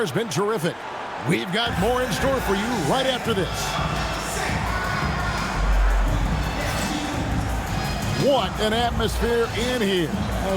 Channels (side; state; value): both; identical; correlation 1.00